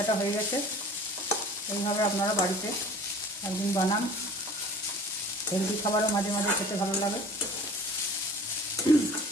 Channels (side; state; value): both; normal; correlation 0.45